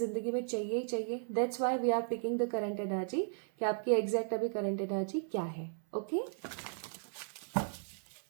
में चाहिए ही चाहिए. That's why we are picking the current energy, कि आपकी एग्जैक्ट अभी करंट एनर्जी क्या है. ओके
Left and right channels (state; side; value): silent; left; 54 dB below the other